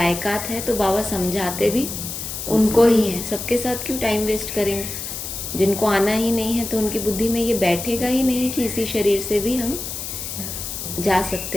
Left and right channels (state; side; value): noise; left; hiss, 7 dB below the sound